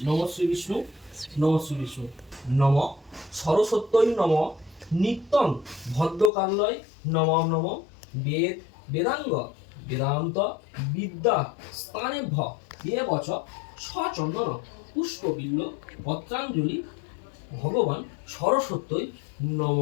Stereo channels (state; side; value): drops out; right; at 6.3 s